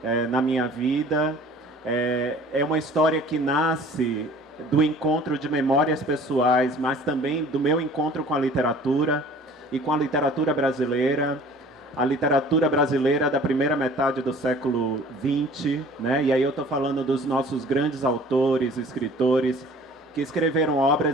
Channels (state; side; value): normal; both; correlation 0.48